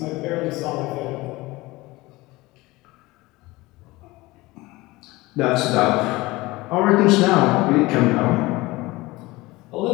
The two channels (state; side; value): quieter; right; 20.7 dB